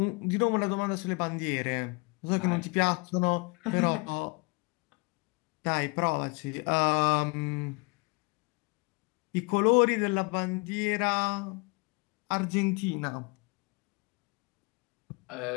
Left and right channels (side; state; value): right; quieter; 29.3 dB